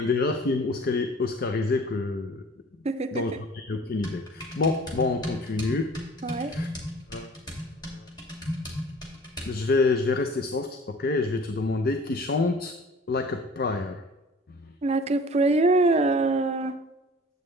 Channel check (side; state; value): both; normal; correlation 0.47